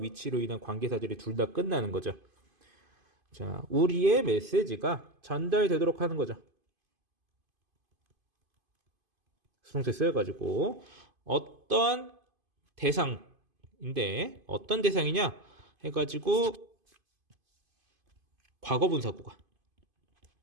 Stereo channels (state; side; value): late; left; 2.5 ms